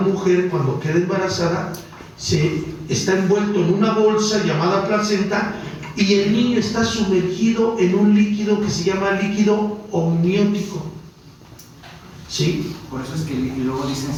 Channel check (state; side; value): identical; both; correlation 1.00